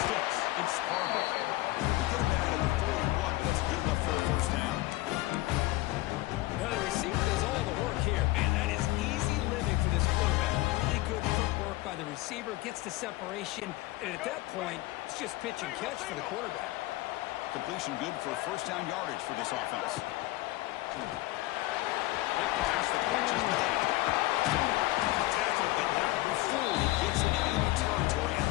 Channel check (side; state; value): right; quieter; 19.0 dB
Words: It's Harbaugh. They get him out of the 41, but that's good enough for a first down. Now the receiver does all the work here. Man, that is easy living for this quarterback. Really good footwork by the receiver. Gets the separation. And at that point, it's just pitch and catch for the quarterback. Completion good for first down yardage for this offense. Pass the catch is made. Tackle, but not before he gets into enemy territory at